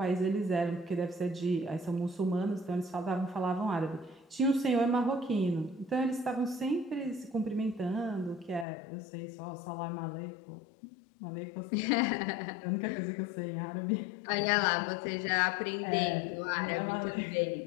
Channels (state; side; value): drops out; right; at 8.7 s